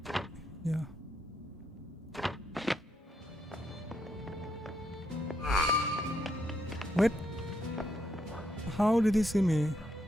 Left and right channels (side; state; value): both; normal; correlation 0.77